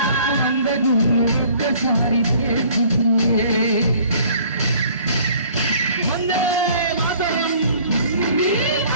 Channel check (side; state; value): both; inverted; correlation -0.54